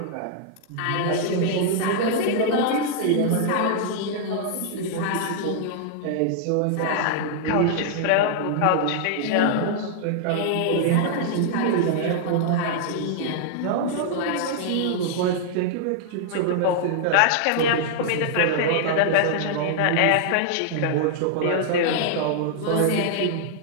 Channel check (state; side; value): different; both; correlation -0.01